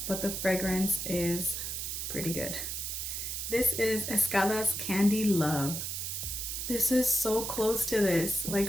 but the fragrance is pretty good. This is Escada's Candy Love. This is so close to this,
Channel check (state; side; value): noise; right; hiss, 4 dB below the sound